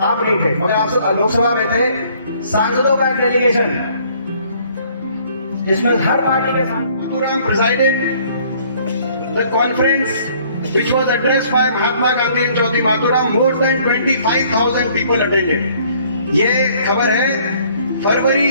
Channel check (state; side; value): inverted; both; correlation -0.60